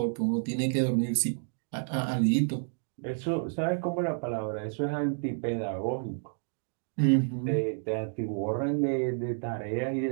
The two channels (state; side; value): silent; left; digital silence